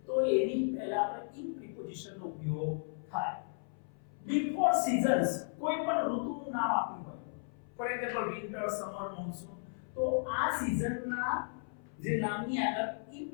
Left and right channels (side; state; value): right; silent; 54 dB below the other